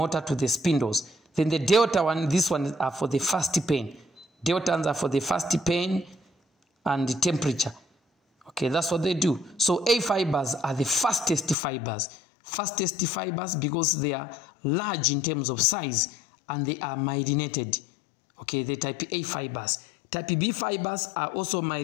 to the spindles. Then the delta one, this one are for the fast pain. Delta ones are for the fast pain and the temperature. Okay, that's what they do. So A fibers are the fastest fibers. Fastest fibers because they are large in terms of size and they are myelinated. Okay, the type A fibers. Type B fibers are also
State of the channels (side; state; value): right; drops out; at 11.6 s